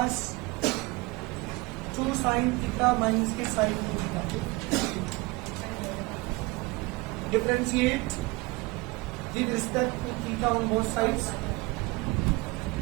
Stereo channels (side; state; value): left; quieter; 24.1 dB